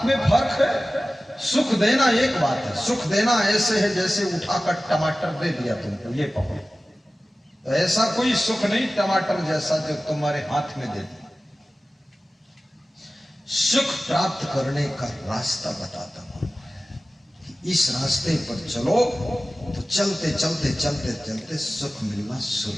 में फर्क है। सुख देना एक बात है, सुख देना ऐसे है जैसे उठाकर टमाटर दे दिया तुमको, ये पकड़ो। तो ऐसा कोई सुख नहीं टमाटर जैसा जो तुम्हारे हाथ में दे दिया। सुख प्राप्त करने का रास्ता बताता हूं। इस रास्ते पर चलो तो चलते चलते चलते चलते सुख मिलना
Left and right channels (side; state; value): both; normal; correlation 0.96